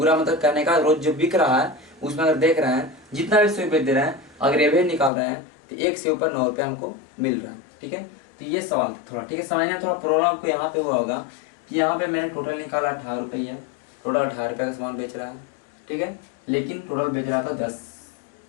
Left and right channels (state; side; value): drops out; right; at 5.1 s